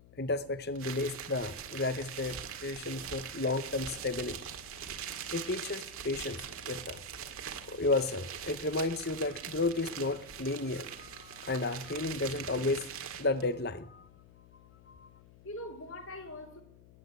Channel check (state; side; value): noise; left; hum, 23 dB below the sound